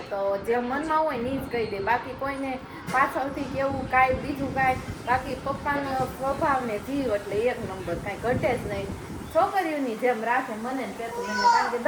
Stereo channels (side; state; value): both; identical; correlation 1.00